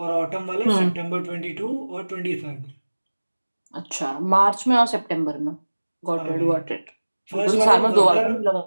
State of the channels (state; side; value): inverted; both; correlation -1.00